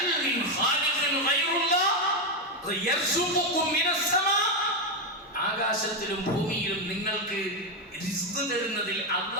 മിൻ ഖാലിഖിൻ ഗൈറുല്ലാഹ് യർസുഖുകും മിനസ് സമാ. ആകാശത്തിലും ഭൂമിയിലും നിങ്ങൾക്ക് റിസ്ക് തരുന്നതിൽ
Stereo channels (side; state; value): both; normal; correlation 0.06